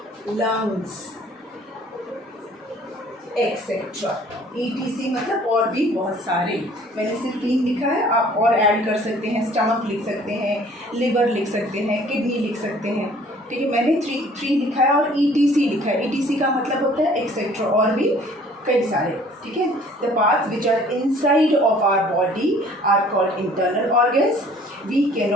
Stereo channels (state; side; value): normal; both; correlation 0.54